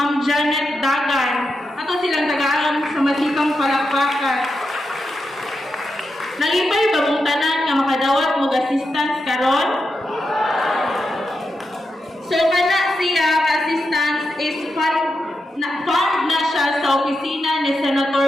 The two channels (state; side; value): normal; both; correlation 0.87